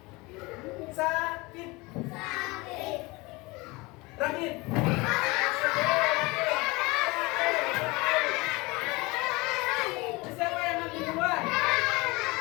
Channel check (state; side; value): quieter; right; 24.1 dB